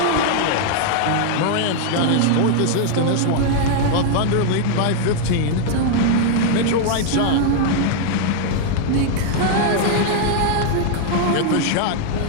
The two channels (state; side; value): different; both; correlation 0.00